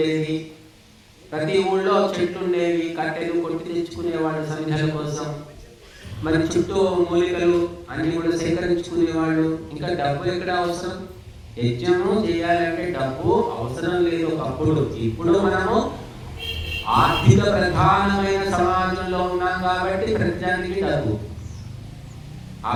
ప్రతి ఊళ్ళో చెట్లు ఉండేవి, కట్టెలు కొట్టి తెచ్చుకునేవాళ్ళు సమిధల కోసం. మరి చుట్టూ మూలికలు అన్ని కూడా సేకరించుకునేవాళ్ళు. ఇంకా డబ్బు ఎక్కడ అవసరం? యజ్ఞము చేయాలంటే డబ్బు అవసరం లేదు ఒకప్పుడు. ఇప్పుడు మనము ఆర్థిక ప్రధానమైన సమాజంలో ఉన్నాం కాబట్టి ప్రతిదానికి డబ్బు, ఆ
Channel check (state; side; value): identical; both; correlation 1.00